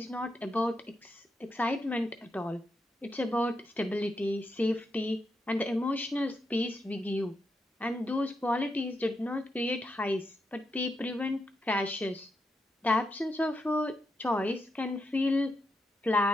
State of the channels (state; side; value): normal; both; correlation 0.83